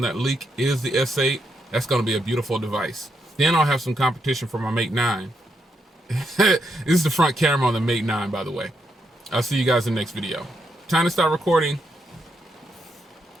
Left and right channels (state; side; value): normal; both; correlation 0.80